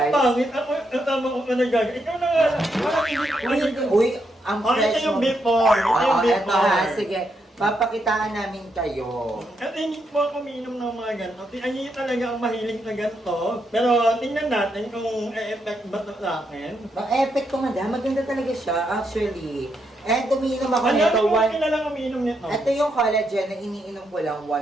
pangit. Ako, ang tama ko ka nagaga. Ikaw na nga. Parang hindi. Uy, ang Oh, fresh ito yung mo. before. Ito yung Oo, eto ha. before. Sige, papakitaan namin kayo. At hindi po ako umiinom ng mga ganito. Ay, talaga ang mahilig na ganito. Pero tingnan natin kung e-effect ba ito sa akin. Ang effect ko, madam. Maganda talaga siya, actually. And umiinom ako Ano nito. yung kilalang umiinom nito? Ito yung collagen na iniinom ko lang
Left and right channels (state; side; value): normal; both; correlation 0.80